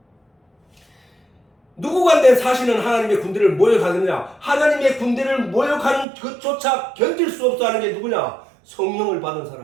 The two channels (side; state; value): left; drops out; at 6.1 s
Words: 누구간데 사시는 하나님의 군대를 모욕하느냐? 하나님의 군대를 모욕하는 그조차 견딜 수 없어 하는 게 누구냐? 성령을 받은